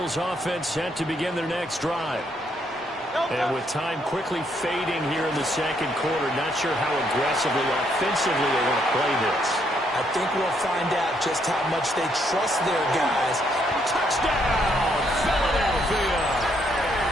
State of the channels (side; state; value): both; normal; correlation 0.73